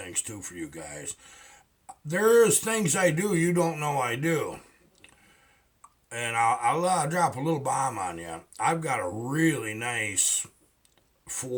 too for you guys. There's things I do you don't know I do. And I'll drop a little bomb on you. I've got a really nice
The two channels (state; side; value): identical; both; correlation 1.00